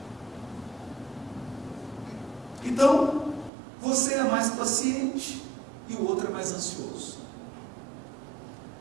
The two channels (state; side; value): drops out; left; at 3.5 s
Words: Então, você é mais paciente e o outro é mais ansioso.